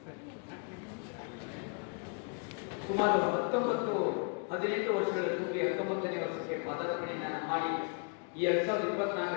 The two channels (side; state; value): right; quieter; 39.7 dB